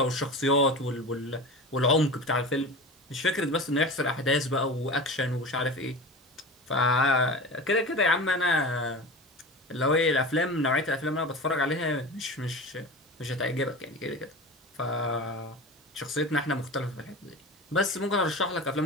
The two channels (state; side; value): normal; both; correlation 0.30